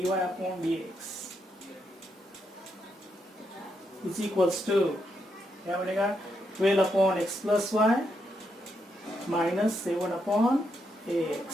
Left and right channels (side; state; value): both; normal; correlation 0.80